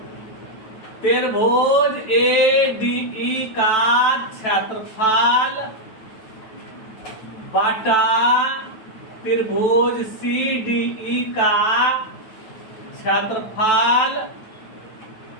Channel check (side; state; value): right; late; 9.1 ms